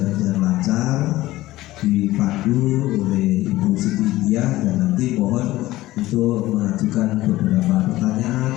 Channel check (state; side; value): quieter; right; 16.9 dB